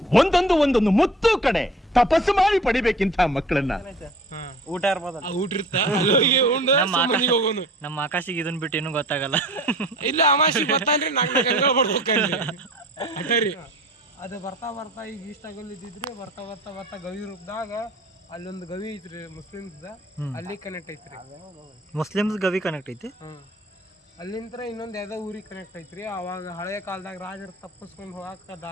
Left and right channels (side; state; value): both; normal; correlation 0.45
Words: ಒಂದೊಂದು ಮುತ್ತು ಕಡೆ ತಪಸ್ಸು ಮಾಡಿ ಪಡಿಬೇಕಿಂತ ಮಕ್ಕಳನ್ನ. ಊಟ ಇರ್ಬೋದ, ಊಟ ಇರ್ತ ಹೋಗೋನು. ನಮ್ಮ ಆಕಾಶಿಗೆ ಇದನ್ ಬಿಟ್ಟು ಏನು ಗೊತ್ತಾಗಲ್ಲ. ಇಲ್ಲ ಅಮಾಸಿ ಬರ್ತಾನ್ರಿ. 4 ಗಂಟೆ ಬರ್ಬೇಕಂದ್ರಿ ಅಟರಿ. ಅದು ಬರ್ತಾ ಬರ್ತಾ ಈಗ ಇಷ್ಟಾಗಲ್ಲಿದ್ದಿದ್ರಿ. ಬರ್ತಾ ಬರ್ತಾ ಬರ್ತಾ ಗವಿ ರೂಪದಾಗ ಅಲ್ಲೊಂದು ಗವಿ ಐತ್ರಿ ಮುಸ್ಲಿಮ್ಸ್, ಅಲ್ಲಿ ಕನೆಕ್ಟ್ ಐತ್ರಿ. ಮುಸ್ಲಿಮ್ಸ್ ಗವಿ ಕನೆಕ್ಟ್ ಐತಿ. ಅಲ್ಲಿಂತ್ರ ಇನ್ನೊಂದ್ ಯಾವ್ದೋ ಊರಿಗೆ ಕನೆಕ್ಟ್ ಐತ್ರಿ. ಅವಾಗ ಹಳೆಯ ಕಾಲದಾಗ ರಾಜರು ತಪ್ಪಿಸ್ಕೊಂಡು ಹೋಗಾಕ